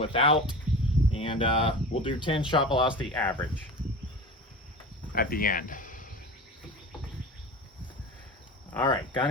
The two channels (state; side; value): normal; both; correlation 0.32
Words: And we'll do 10 shot velocity average at the end. All right, gun